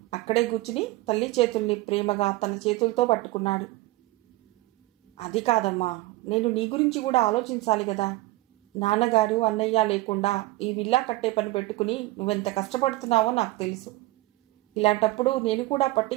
అక్కడే కూర్చుని తల్లి చేతుల్ని ప్రేమగా తన చేతులతో పట్టుకున్నాడు. అది కాదమ్మా, నేను నీ గురించి కూడా ఆలోచించాలి కదా. నాన్నగారు అన్నయ్య లేకుండా ఈ విల్లా కట్టే పని పెట్టుకుని నువ్వెంత కష్టపడుతున్నావో నాకు తెలుసు. ఇలాంటప్పుడు నేను కూడా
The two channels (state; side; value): quieter; left; 18.7 dB